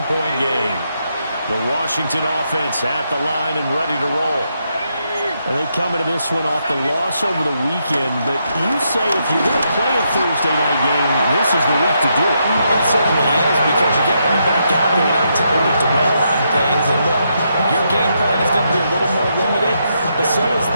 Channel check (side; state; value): both; inverted; correlation -0.79